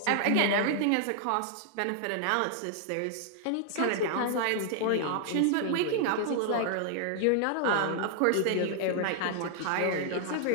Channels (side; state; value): both; different; correlation 0.00